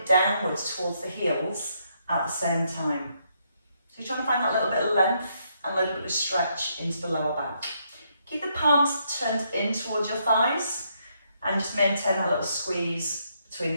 downwards towards the heels at the same time. So you're trying to find that little bit of length and a little bit of stretch into the lower back. Keep the palms turned in towards your thighs and just maintain that little squeeze between the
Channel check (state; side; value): inverted; both; correlation -0.75